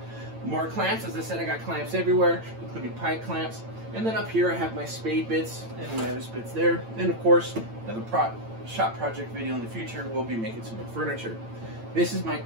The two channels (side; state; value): left; late; 8.9 ms